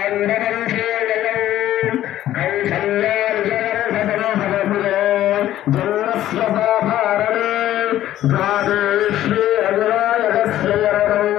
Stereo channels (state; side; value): quieter; right; 13.1 dB